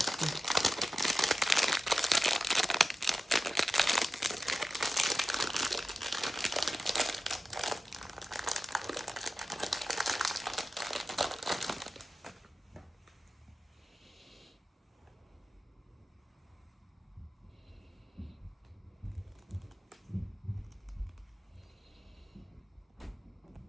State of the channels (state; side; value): normal; both; correlation 0.93